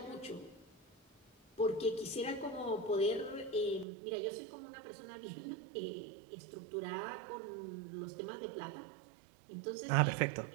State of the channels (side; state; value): left; drops out; at 3.9 s